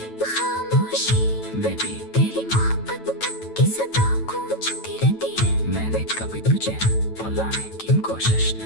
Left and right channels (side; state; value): right; late; 9.1 ms